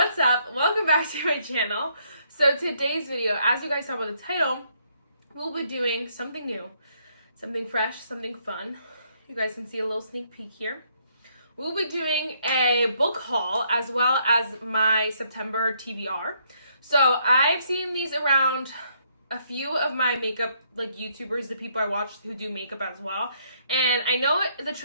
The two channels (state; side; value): inverted; both; correlation -0.71